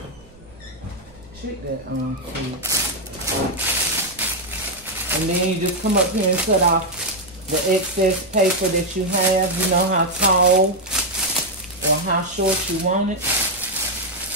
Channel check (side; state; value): right; noise; rumble, 26 dB below the sound